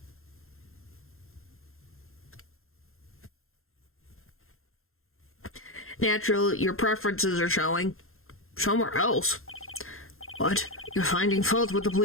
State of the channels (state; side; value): late; right; 0.61 ms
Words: Natural, your preferences are showing. Somewhere else? What? You're finding fault with the